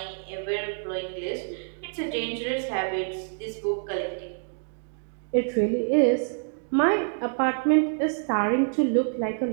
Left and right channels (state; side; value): silent; left; digital silence